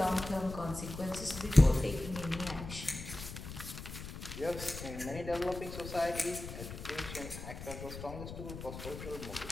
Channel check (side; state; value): left; noise; rumble, 10 dB below the sound